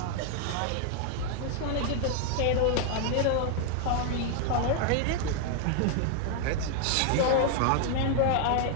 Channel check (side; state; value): both; different; correlation 0.00